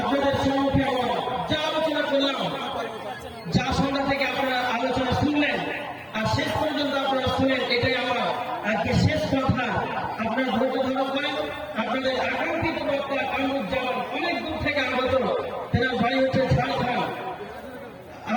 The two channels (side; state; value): both; identical; correlation 1.00